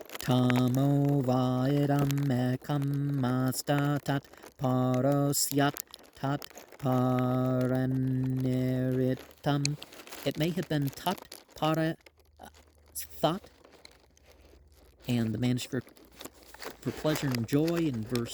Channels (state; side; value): identical; both; correlation 1.00